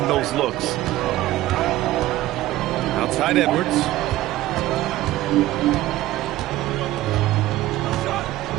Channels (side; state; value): left; quieter; 15.8 dB